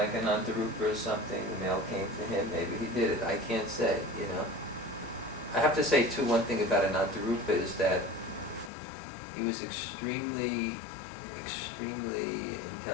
an Dhanurdhara or something, the mail came to him, maybe he did it, I can't say, you know. I have to say too, one thing about an Dhanurdhara is that he was extremely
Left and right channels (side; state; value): right; drops out; at 8.7 s